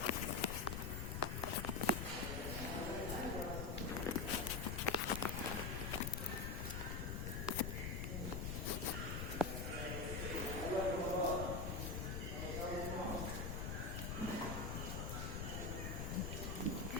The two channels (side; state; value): left; noise; rumble, 2 dB below the sound